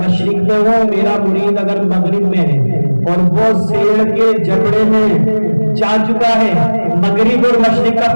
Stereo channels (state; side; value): inverted; both; correlation -1.00